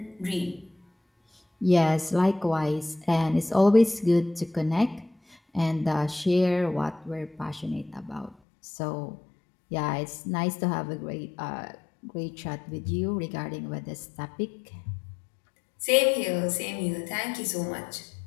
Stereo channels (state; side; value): drops out; right; at 8.3 s